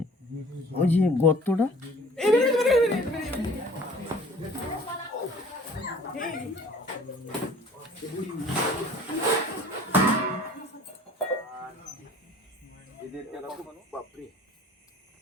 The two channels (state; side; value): normal; both; correlation 0.50